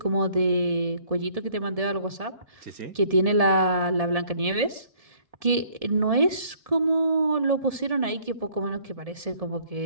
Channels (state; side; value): late; left; 1.7 ms